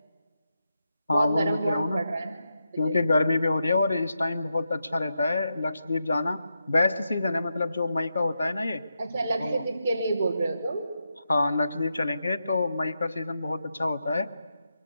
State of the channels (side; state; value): both; inverted; correlation -0.86